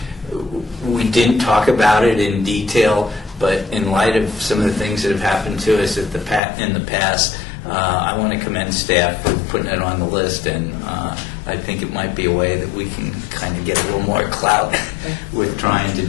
we didn't talk about it in detail, but in light of some of the things that have happened to us in the past, I want to commend staff for putting it on the list, and I think it might be a way that we can kind of get a little more clout with trying to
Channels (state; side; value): drops out; right; at 6.4 s